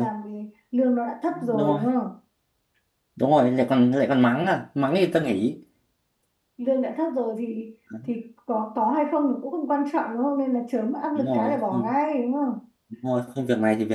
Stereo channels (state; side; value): identical; both; correlation 1.00